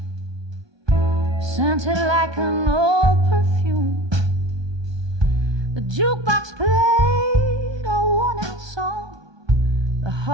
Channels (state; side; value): late; left; 1.2 ms